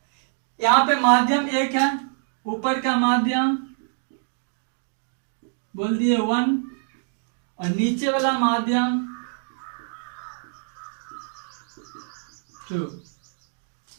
यहां पे माध्यम एक है, ऊपर का माध्यम बोल दिए 1 और नीचे वाला माध्यम 2।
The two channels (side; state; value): left; silent; 61 dB below the other